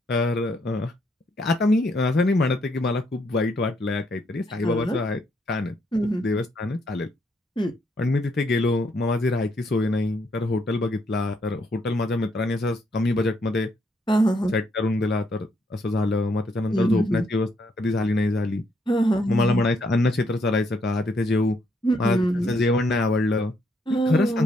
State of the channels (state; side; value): normal; both; correlation 0.73